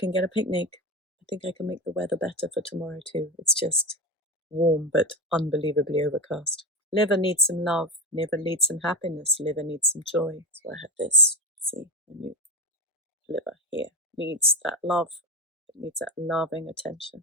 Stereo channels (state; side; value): normal; both; correlation 0.16